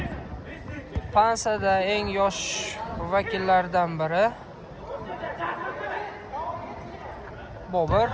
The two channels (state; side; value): identical; both; correlation 1.00